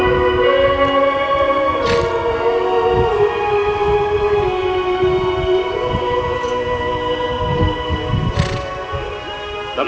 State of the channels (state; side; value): identical; both; correlation 1.00